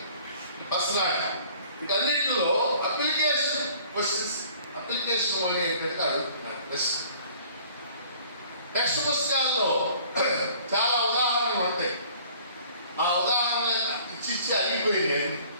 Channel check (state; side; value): inverted; both; correlation -0.52